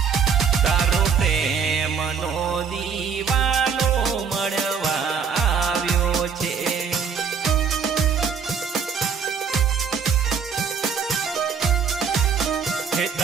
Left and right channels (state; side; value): quieter; left; 6.4 dB